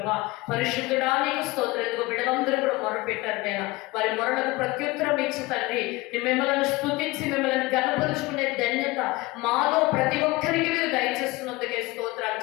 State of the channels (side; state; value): right; quieter; 21.6 dB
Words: పరిశుద్ధుడా నీకు స్తోత్రాలు. ఇదిగో బిడ్డలందరూ కూడా మొరపెట్టారు నాయన. వారి మొరలకు ప్రత్యుత్తరం ఇచ్చి తండ్రి మిమ్మల్ని స్తుతించి మిమ్మల్ని గణపరుచుకునే ధన్యత మాలో ప్రతి ఒక్కరికి మీరు దయచేస్తున్నందుకే స్తోత్రాలు